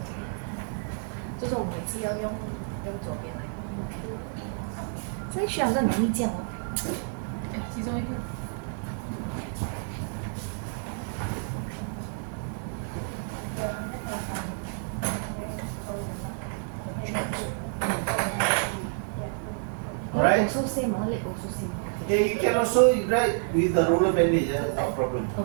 就是我每次要用左边来。这需要很容易这样哦。哎，其中一个。Alright? Also same, leg also same. Okay, you can also write with the roller bandage, no problem.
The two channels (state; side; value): silent; left; 59 dB below the other